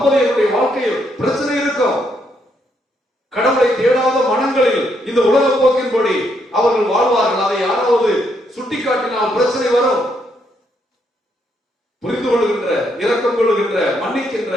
வாழ்க்கையில் பிரச்சனை இருக்கும். கடவுளை தேடாத மனங்களில் இந்த உலக போக்கின்படி அவர்கள் வாழ்வார்கள். அதை யாராவது சுட்டிக்காட்டினால் பிரச்சனை வரும். புரிந்து கொள்கின்ற, இரக்கம் கொள்கின்ற, மன்னிக்கின்ற,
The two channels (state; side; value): normal; both; correlation 0.75